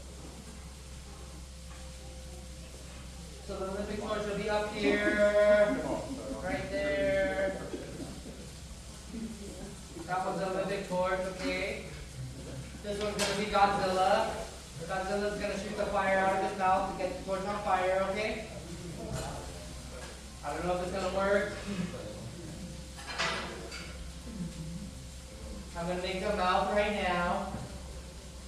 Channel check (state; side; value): identical; both; correlation 1.00